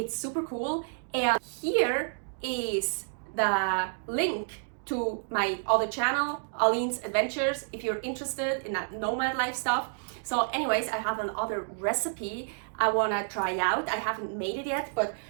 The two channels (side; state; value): left; silent; digital silence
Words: super cool. And here is the link to my other channel, Aline's Adventures, if you're interested in that nomad life stuff. So anyways, I have another recipe I wanna try out. I haven't made it yet, but